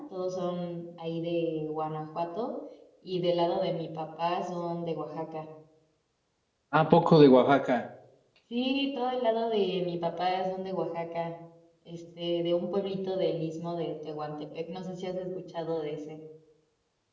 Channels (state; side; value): identical; both; correlation 1.00